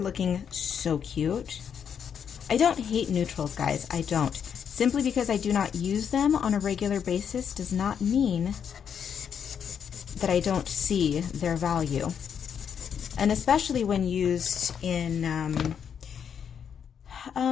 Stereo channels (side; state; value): right; quieter; 7.8 dB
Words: so cute. I don't hate neutrals, guys. I don't. Simply because I do not use them on a regular basis does not mean that I don't see their value. And especially when used in,